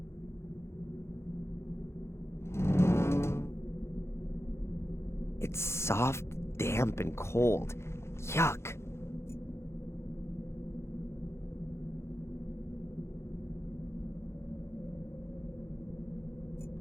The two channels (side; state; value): right; late; 0.13 ms